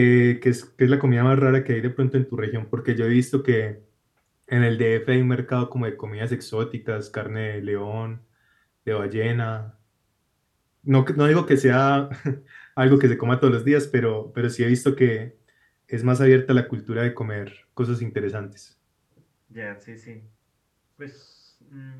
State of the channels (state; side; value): identical; both; correlation 1.00